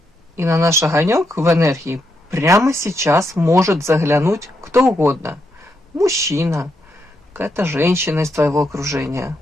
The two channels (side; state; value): both; normal; correlation 0.81